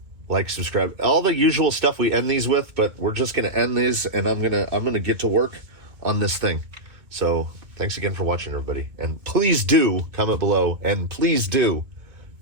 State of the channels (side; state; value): left; late; 2.2 ms